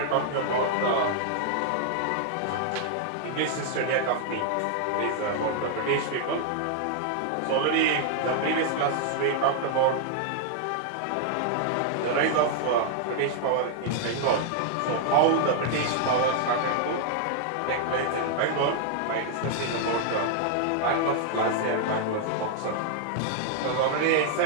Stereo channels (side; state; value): both; different; correlation -0.01